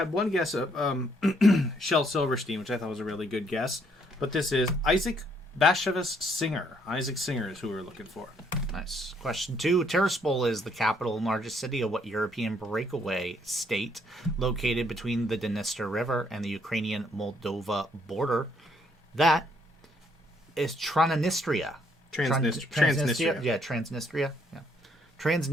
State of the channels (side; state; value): both; normal; correlation 0.69